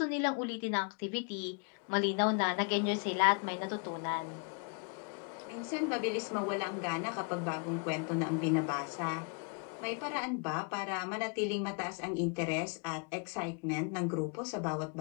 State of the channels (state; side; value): quieter; right; 38.0 dB